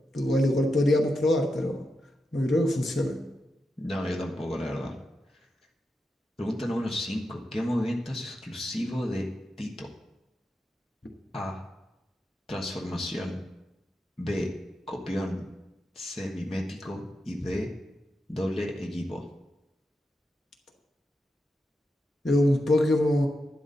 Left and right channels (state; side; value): normal; both; correlation 0.87